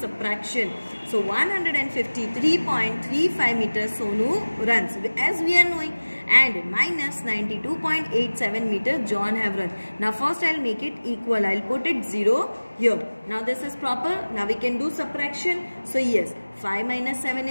So 153.35 meters Sonu runs as we are knowing, and minus 92.87 meters John have run. Now first I will make it equal. I will put it 0 here. Now this is proper. Now we can do subtraction. So yes, 5 minus 7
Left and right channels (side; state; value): both; inverted; correlation -1.00